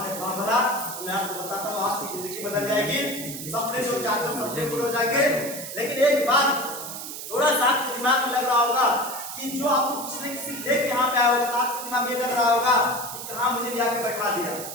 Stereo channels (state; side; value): noise; right; hiss, 8 dB below the sound